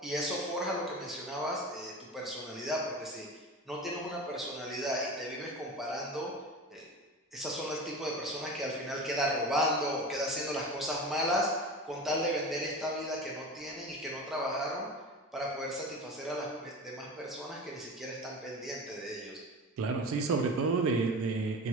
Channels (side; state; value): both; normal; correlation 0.31